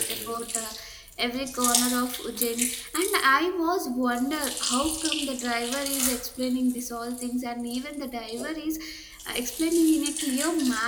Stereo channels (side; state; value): both; identical; correlation 1.00